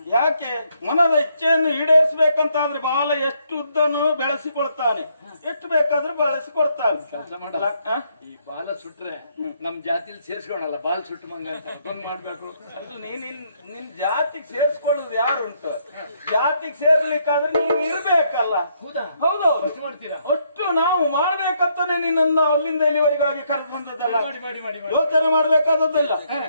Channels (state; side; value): inverted; both; correlation -0.73